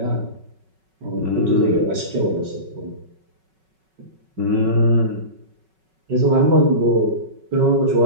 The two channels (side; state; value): left; late; 5.3 ms